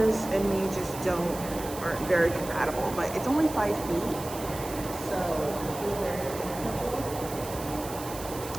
and me just aren't very compatible. But it's only 5 feet, so I feel very comfortable.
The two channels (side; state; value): right; noise; hiss, 12 dB below the sound